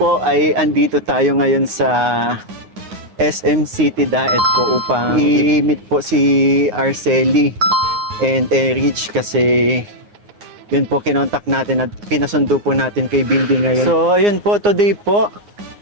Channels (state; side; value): late; left; 9.6 ms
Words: ay andito tayo ngayon sa SM City Daet po upang i-meet po si Arcely and Erich kasi yun po kinontak natin at pinasundo po natin kay Bimbi ngayon. So ayun po, today po